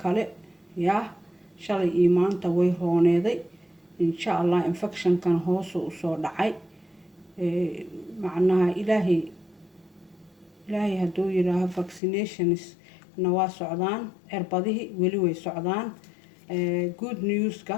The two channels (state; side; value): drops out; right; at 12.0 s